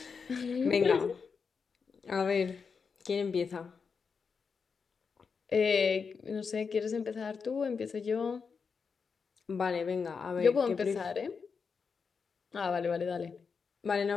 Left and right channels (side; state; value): right; quieter; 5.5 dB